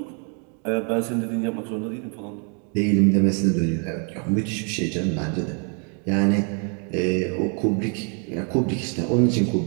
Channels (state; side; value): quieter; left; 39.1 dB